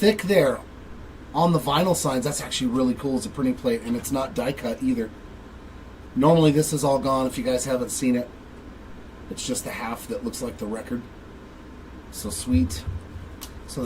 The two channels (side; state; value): both; identical; correlation 1.00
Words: there on the vinyl signs. That's actually really cool as a printing plate, and it's not die cut either. Normally this is all gone if you guys haven't seen it. It's just the half that looks like the record. So sweet. So